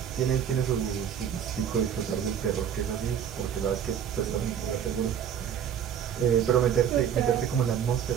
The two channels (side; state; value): left; quieter; 8.6 dB